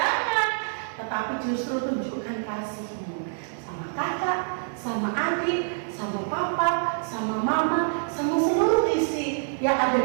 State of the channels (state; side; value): silent; left; 61 dB below the other